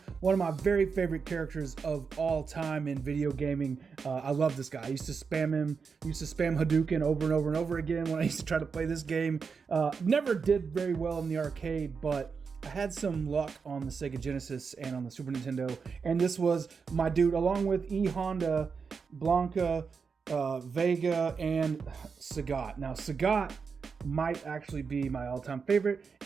one of my very favorite characters of all time in video gaming. I love this guy. I used to spam him, Hadouken over and over and over again when I used to try to play this game. Never did very well in the arcade, but I had some luck on the Sega Genesis and on the Super Nintendo, and this was my dude, along with E Honda, Blanca, Vega, and Sagat. Now, Sagat might actually be my all-time favorite,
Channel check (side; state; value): left; quieter; 5.5 dB